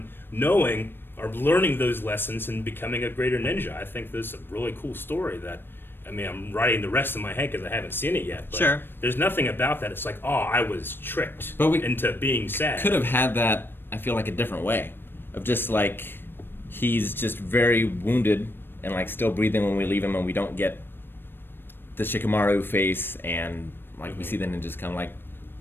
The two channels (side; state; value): right; late; 0.099 ms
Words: knowing or learning those lessons and becoming a greater ninja. I think this is a really cool story that. I mean, I'm writing the rest of my head because I haven't seen it yet. But Sure. There's nothing about that. It's like, oh, I was tricked But we into being sad. Could have had that, I feel like, a different way. Of just like, he's just very wounded and like still breathing when we leave him, and we don't get the Shikamaru face, and like we see the ninjas come. Like,